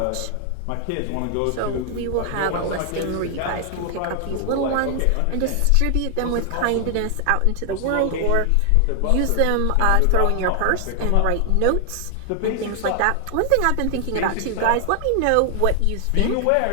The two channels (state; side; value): different; both; correlation 0.00